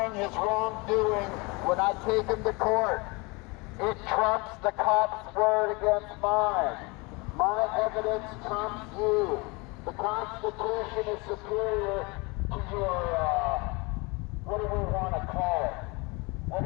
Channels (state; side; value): quieter; right; 27.1 dB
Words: his wrongdoing when I take him to court. It trumps the cop's word against mine. My evidence trumps you. The Constitution is superior to your, what do we want to call it? What